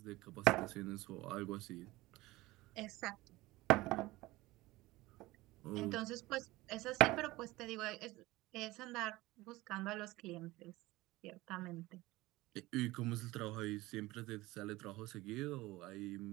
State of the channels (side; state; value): left; quieter; 19.4 dB